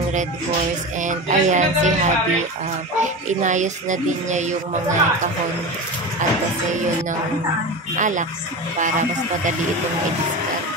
Red Horse. And ayan, si Habi, inayos na din niya yung mga kahon at kasi yun ng alak para mas madali itong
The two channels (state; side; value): normal; both; correlation 0.26